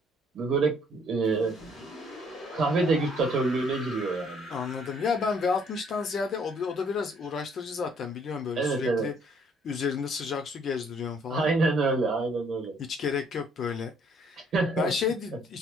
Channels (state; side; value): normal; both; correlation 0.63